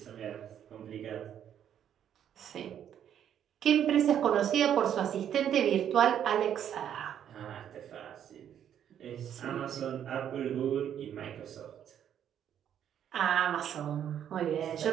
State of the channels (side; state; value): left; quieter; 9.6 dB